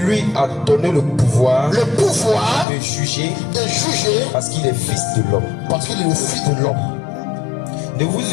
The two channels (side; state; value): right; drops out; at 2.7 s